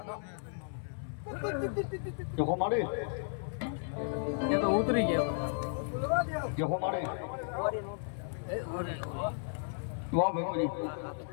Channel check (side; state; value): right; silent; 55 dB below the other